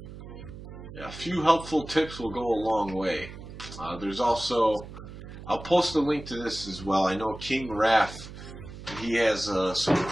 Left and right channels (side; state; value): right; noise; hum, 13 dB below the sound